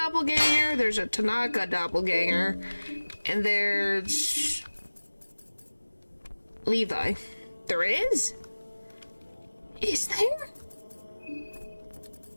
there's a Tanaka doppelganger, and there's... Levi. There is? Is there?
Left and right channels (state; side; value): inverted; both; correlation -1.00